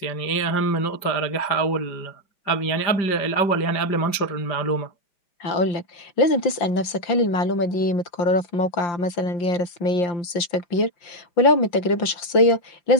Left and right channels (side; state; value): right; late; 5.7 ms